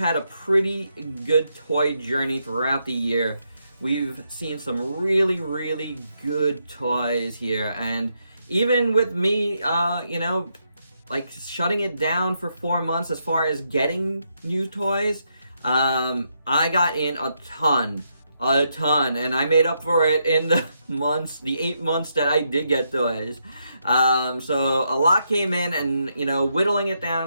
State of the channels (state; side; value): inverted; both; correlation -0.79